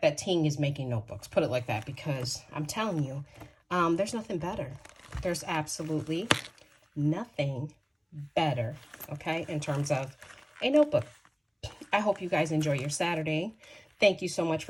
that Ting is making notebooks. Put it like that, because I'm telling you, there's nothing better. There's absolutely nothing better, okay, in terms of a notebook. I hope you guys enjoy your Saturday. Thank you so much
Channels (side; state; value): both; identical; correlation 1.00